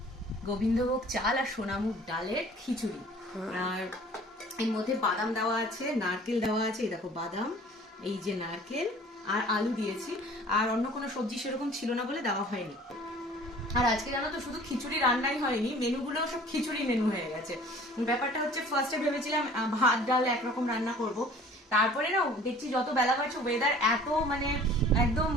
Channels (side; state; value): both; normal; correlation 0.49